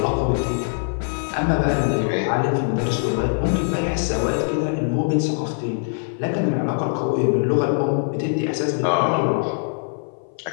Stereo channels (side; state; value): right; silent; 57 dB below the other